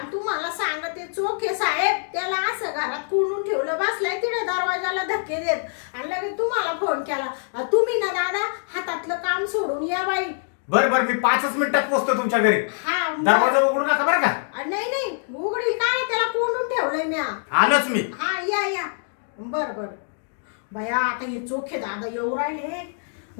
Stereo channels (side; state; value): right; silent; digital silence